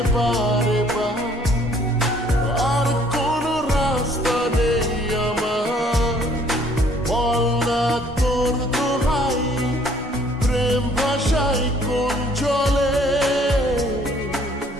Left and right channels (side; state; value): both; normal; correlation 0.60